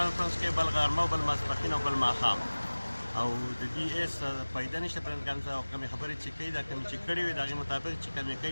کوي بل غرمه او بل ماسپښین او بل ماښام او د دې هېڅ فایده نشته پرېس کانفرنس او کومې خبرې چې کوي دا کومې چې کړې وي د هغې مطابق چې کومې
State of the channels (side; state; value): both; inverted; correlation -1.00